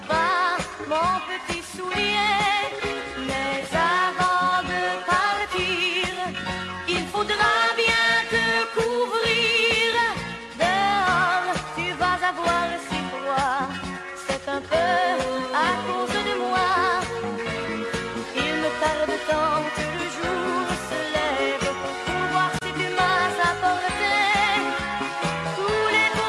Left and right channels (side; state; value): both; identical; correlation 1.00